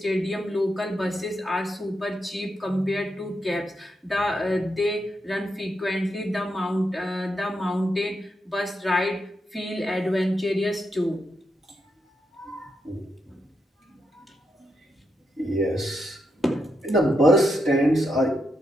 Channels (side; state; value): both; normal; correlation 0.83